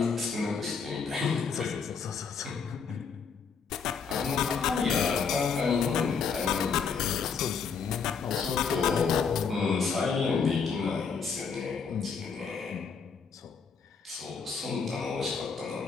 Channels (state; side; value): quieter; right; 5.8 dB